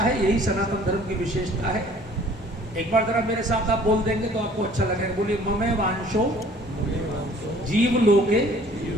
यही सनातन धर्म की विशेषता है। एक बार जरा मेरे साथ आप बोल देंगे तो आपको अच्छा लगेगा। बोलिए, ममे वांशो जीव लोके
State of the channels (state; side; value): normal; both; correlation 0.53